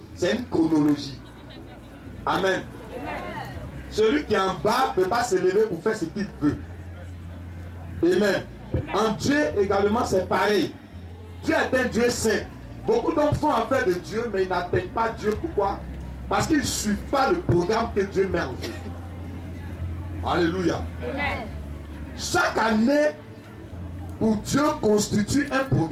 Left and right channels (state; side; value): identical; both; correlation 1.00